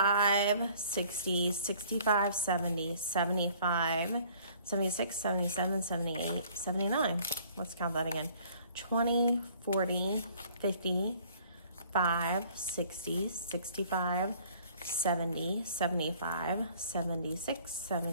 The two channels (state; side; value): inverted; both; correlation -0.55